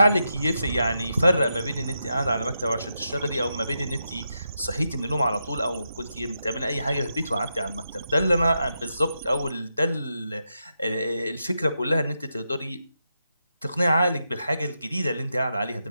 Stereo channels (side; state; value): both; inverted; correlation -0.85